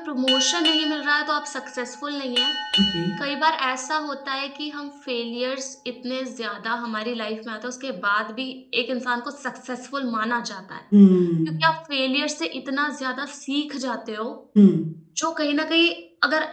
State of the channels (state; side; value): identical; both; correlation 1.00